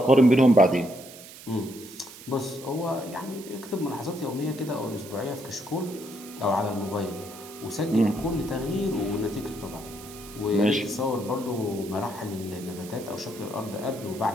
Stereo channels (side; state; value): right; noise; hiss, 17 dB below the sound